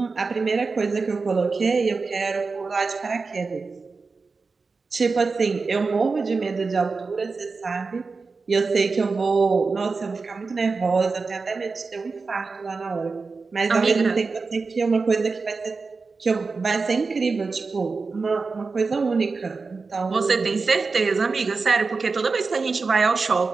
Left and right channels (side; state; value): left; quieter; 4.3 dB